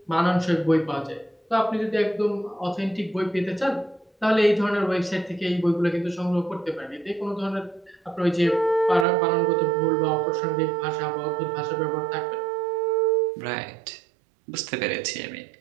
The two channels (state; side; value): drops out; left; at 9.1 s